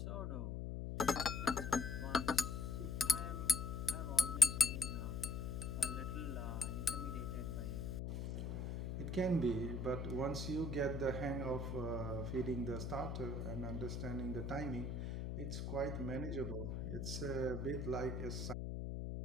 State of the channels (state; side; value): noise; left; hum, 3 dB below the sound